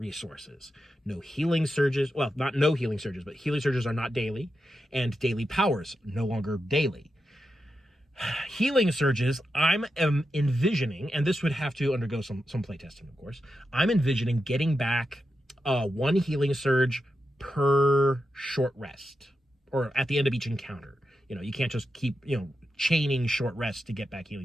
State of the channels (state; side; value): normal; both; correlation 0.88